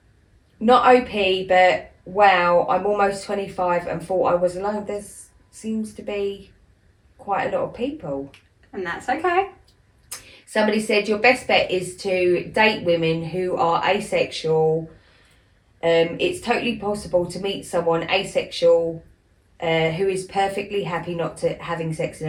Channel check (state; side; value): identical; both; correlation 1.00